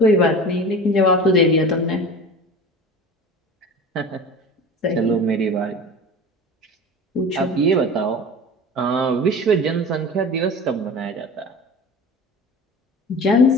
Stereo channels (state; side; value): normal; both; correlation 0.35